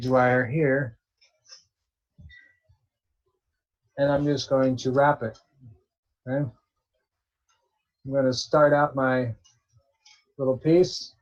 wire here, and I'm just going to wrap it. Okay. I'm going to start out my little piece.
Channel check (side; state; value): both; identical; correlation 1.00